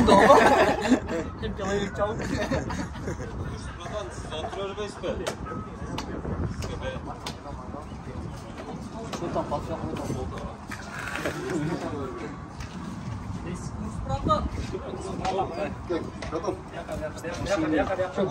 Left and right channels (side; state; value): both; identical; correlation 1.00